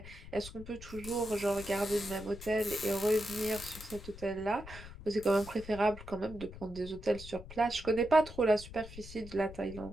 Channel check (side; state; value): left; noise; rumble, 14 dB below the sound